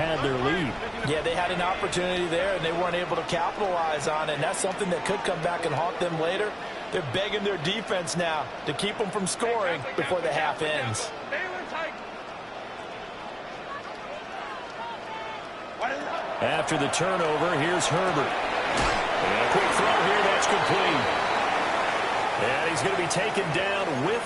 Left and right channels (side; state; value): both; identical; correlation 1.00